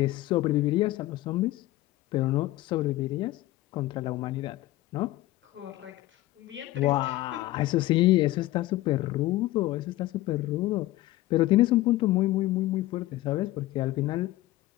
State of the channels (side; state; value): right; quieter; 16.8 dB